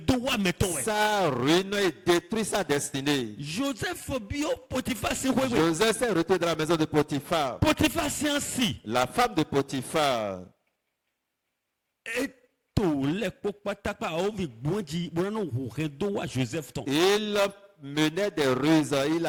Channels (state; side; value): identical; both; correlation 1.00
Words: wa meton we. ça ruine et détruit sa destinée. Joseph bio Potiphar si ko. Joseph s'est retrouvé dans la maison de Potiphar. Potiphar si ansi. La femme de Potiphar, Eto le po patapa o vi gbonji bona no hu redo wa Joseph ton. il menait des ruses, il